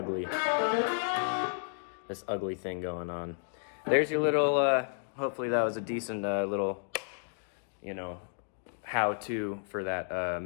thing going on. There's your little, hopefully that was a decent little, you know, how-to for that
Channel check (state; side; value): silent; right; digital silence